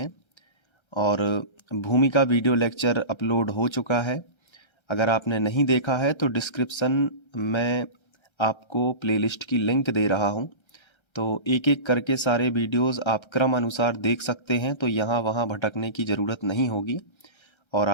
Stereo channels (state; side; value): late; right; 1.3 ms